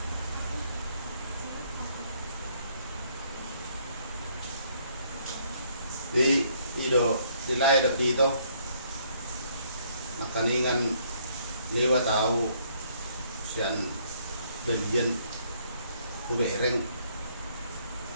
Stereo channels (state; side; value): inverted; both; correlation -0.67